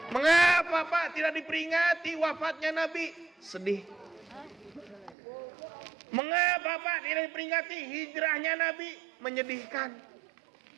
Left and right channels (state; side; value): drops out; left; at 5.2 s